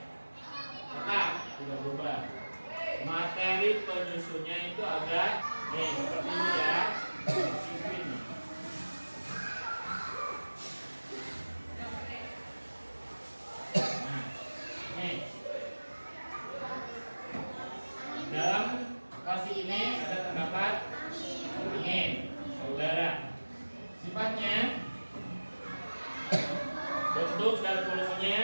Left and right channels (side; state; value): both; inverted; correlation -1.00